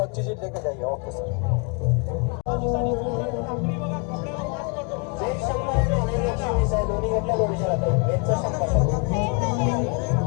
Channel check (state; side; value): quieter; right; 34.1 dB